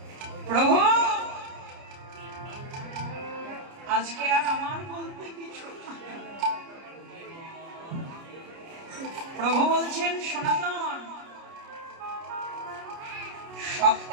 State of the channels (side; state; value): left; late; 30 ms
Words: প্রভু, আজকে আর আমার বলতে কিছু না। প্রভু বলছেন, সনাতন সব